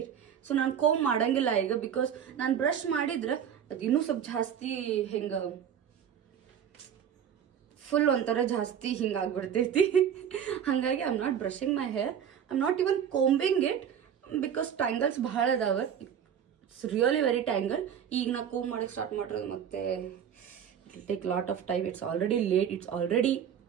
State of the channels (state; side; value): quieter; left; 8.6 dB